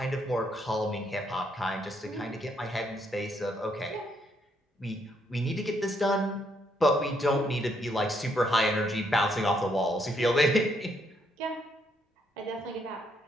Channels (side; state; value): both; normal; correlation 0.73